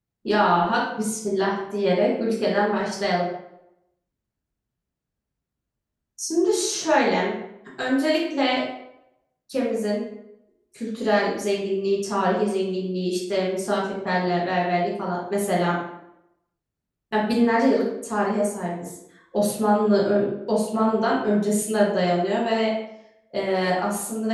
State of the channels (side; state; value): both; identical; correlation 1.00